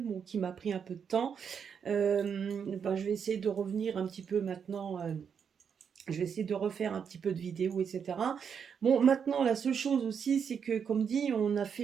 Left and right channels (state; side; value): quieter; left; 7.1 dB